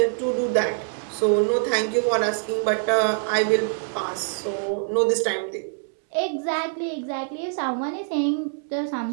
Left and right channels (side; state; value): left; silent; digital silence